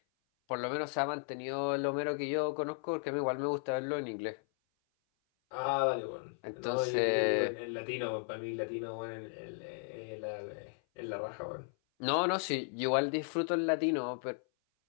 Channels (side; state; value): right; silent; 54 dB below the other